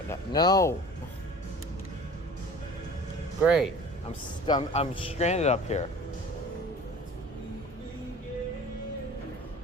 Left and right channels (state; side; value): normal; both; correlation 0.43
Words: that? No. Great. I'm stranded up here.